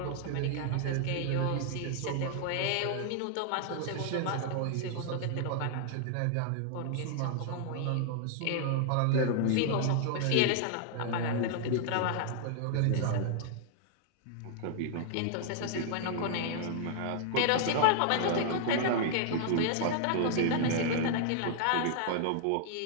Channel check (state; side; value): different; both; correlation 0.00